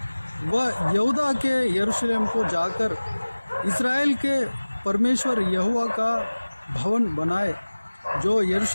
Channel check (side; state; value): both; inverted; correlation -1.00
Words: वह यहूदा के यरूशलेम को जाकर इस्राएल के परमेश्वर यहोवा का भवन बनाए। जो